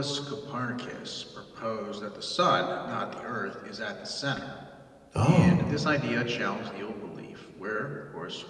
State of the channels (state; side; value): identical; both; correlation 1.00